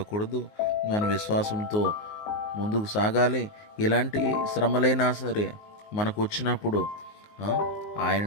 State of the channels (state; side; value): late; right; 19 ms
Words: మన విశ్వాసంతో ముందుకు సాగాలి. ఇలాంటి శ్రమలైనా సరే మనకు వచ్చినప్పుడు